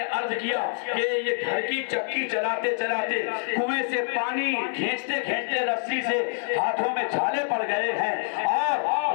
عرض کیا کہ یہ گھر کی چکی چلاتے چلاتے کنویں سے پانی کھینچتے کھینچتے رسی سے ہاتھوں میں چھالے پڑ گئے ہیں۔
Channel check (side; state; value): right; silent; digital silence